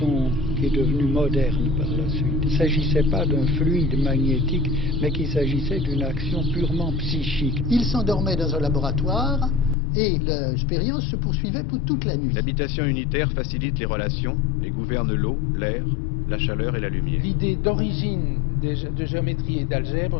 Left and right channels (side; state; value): right; drops out; at 9.8 s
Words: qui est devenue moderne par la suite. Il ne s'agissait pas d'un fluide magnétique, mais qu'il s'agissait d'une action purement psychique. Il s'endormait dans un laboratoire et l'expérience se poursuivait pour toute la nuit. L'habitation unitaire facilite les relations et gouverne l'eau, l'air, la chaleur et la lumière. L'idée d'origine de géométrie et